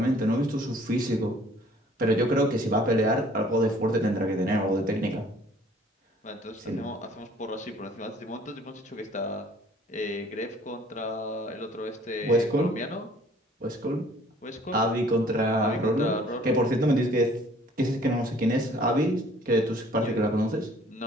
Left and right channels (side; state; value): both; normal; correlation 0.56